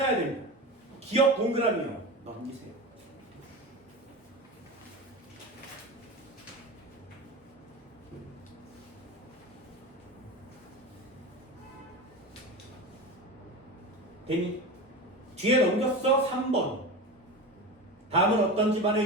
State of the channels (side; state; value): both; normal; correlation 0.26